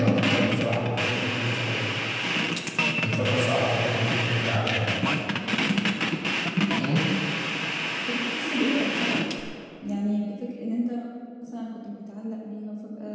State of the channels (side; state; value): both; identical; correlation 1.00